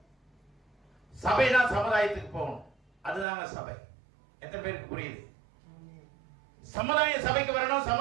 சபை தான் சமுதாயத்துக்கு போகணும். அதுதாங்க சபை. எத்தனை பேருக்கு புரியுது? சமுதாய சபைக்கு வரணும்,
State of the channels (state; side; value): drops out; left; at 3.2 s